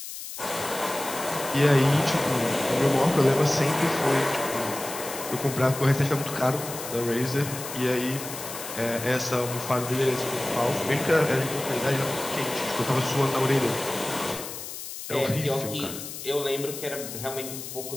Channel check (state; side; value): noise; left; hiss, 9 dB below the sound